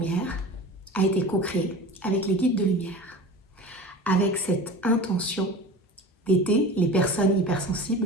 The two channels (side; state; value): both; normal; correlation 0.35